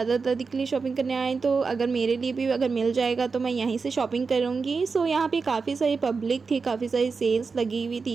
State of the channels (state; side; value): quieter; left; 4.8 dB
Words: दादी के लिए शॉपिंग करने आए तो अगर मेरे लिए भी अगर मिल जाएगा तो मैं यहीं से शॉपिंग करूँगी। यहाँ पे काफ़ी सारी पब्लिक थी, काफ़ी सारी सेल्स लगी हुई